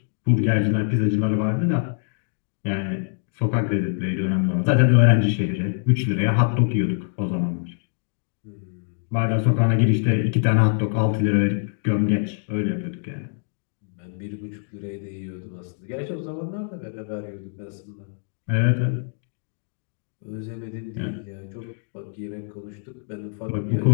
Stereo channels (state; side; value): silent; right; digital silence